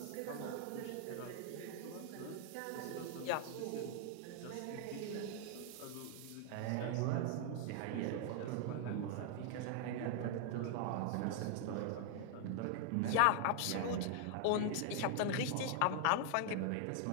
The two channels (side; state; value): both; different; correlation 0.00